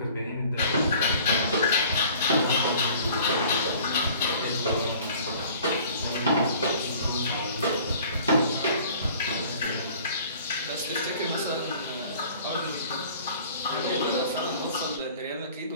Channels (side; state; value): both; inverted; correlation -0.49